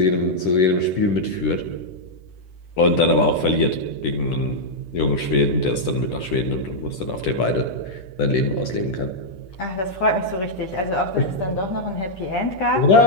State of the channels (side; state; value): right; late; 10 ms